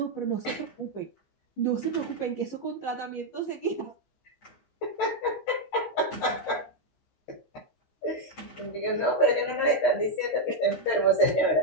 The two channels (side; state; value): right; late; 15 ms